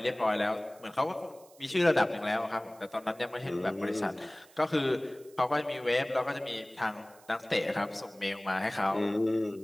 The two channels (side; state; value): right; noise; hiss, 26 dB below the sound